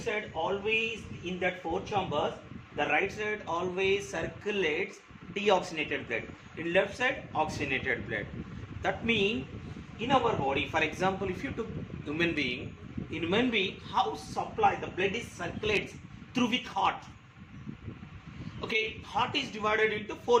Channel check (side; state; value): both; identical; correlation 1.00